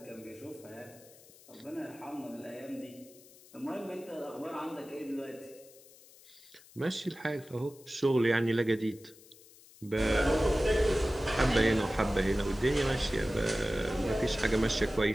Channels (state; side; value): noise; left; hiss, 23 dB below the sound